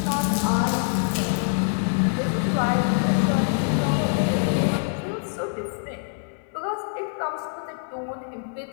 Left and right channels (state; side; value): silent; right; 60 dB below the other